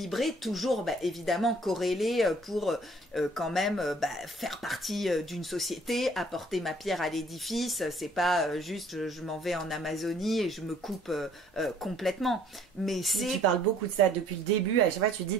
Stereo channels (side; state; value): both; normal; correlation 0.58